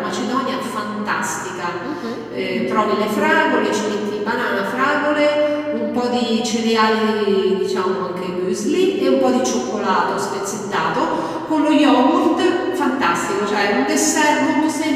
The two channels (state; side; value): identical; both; correlation 1.00